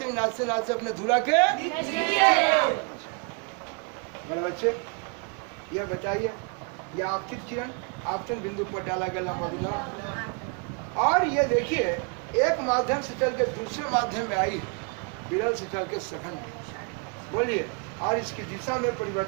नाचते नाचते अपने धुरा के। मेरे बच्चे ये बताइए, ये आपतित किरण आपतन बिंदु पर डाला गया लंब अविलंब, और ये देखिए एक माध्यम से चल के दूसरे माध्यम में आई, विरल से चल के सघन में। बोलिए, और इसकी दिशा में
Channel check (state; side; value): quieter; left; 35.5 dB